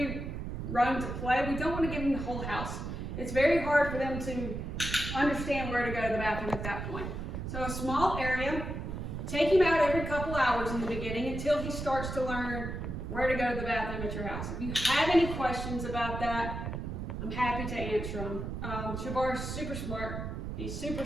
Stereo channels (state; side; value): noise; right; rumble, 5 dB below the sound